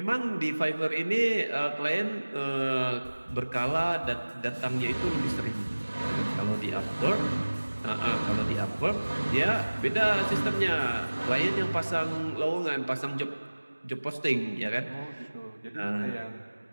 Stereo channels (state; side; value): inverted; both; correlation -1.00